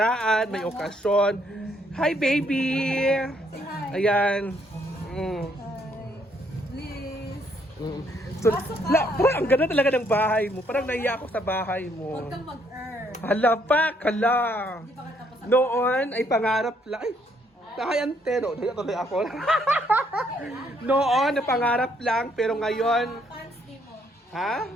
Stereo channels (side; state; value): both; normal; correlation 0.69